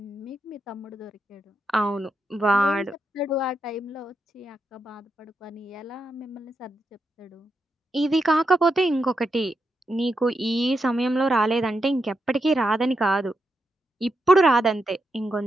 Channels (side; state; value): both; normal; correlation 0.84